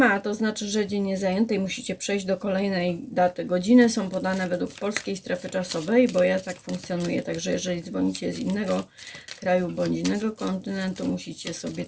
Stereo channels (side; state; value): both; identical; correlation 1.00